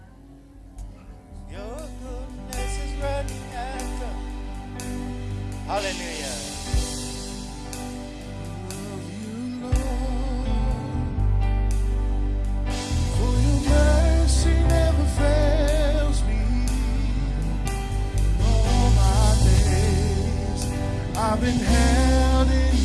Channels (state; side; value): identical; both; correlation 1.00